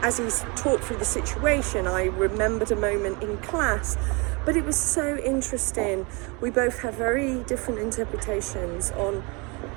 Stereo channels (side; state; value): left; quieter; 29.3 dB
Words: as he talked through the situation, I remembered a moment in class. But it was so interesting. We both had very different interpretations on